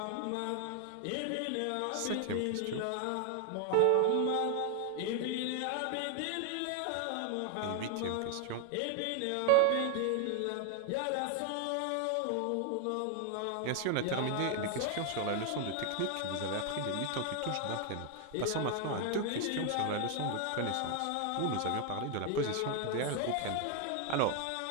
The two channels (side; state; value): both; different; correlation 0.00